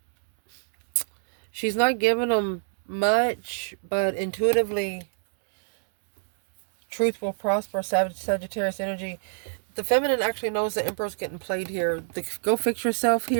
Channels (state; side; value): silent; left; digital silence